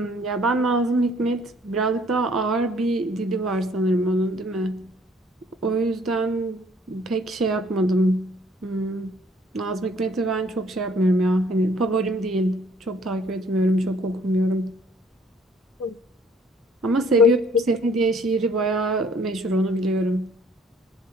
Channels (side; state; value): both; normal; correlation 0.59